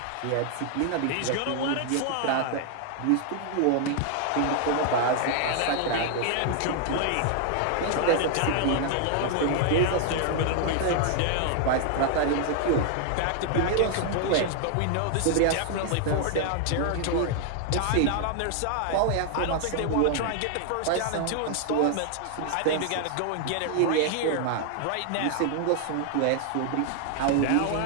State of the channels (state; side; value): different; both; correlation 0.00